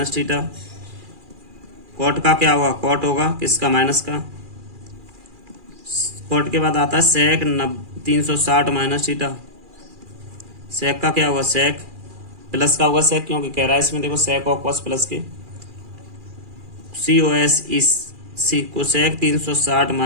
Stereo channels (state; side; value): late; left; 2.4 ms